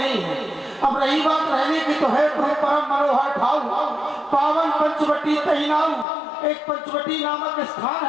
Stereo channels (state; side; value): drops out; right; at 6.1 s